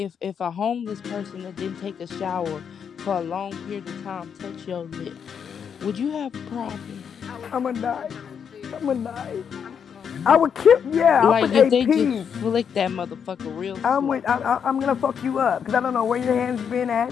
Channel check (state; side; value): quieter; right; 7.4 dB